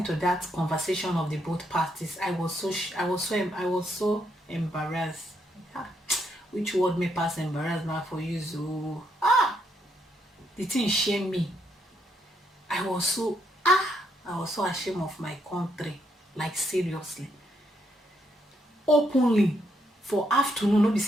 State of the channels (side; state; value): both; normal; correlation 0.75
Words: to that conversation of the both parties, I was so embarrassed. Which word may pass embarrassed now for you? So the thing shame me. I was so ashamed of my country, like seriously. Openly for afternoon, no be